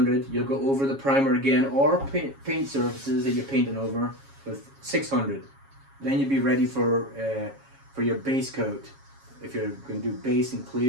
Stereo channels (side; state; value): left; late; 7.3 ms